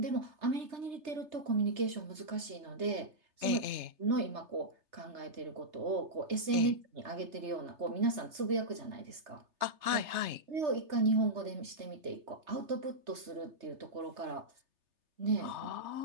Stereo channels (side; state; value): left; late; 3.3 ms